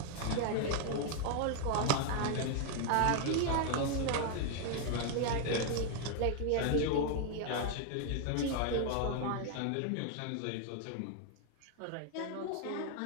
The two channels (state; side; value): different; both; correlation 0.00